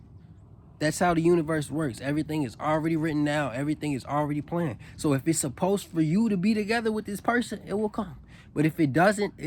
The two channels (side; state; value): both; identical; correlation 1.00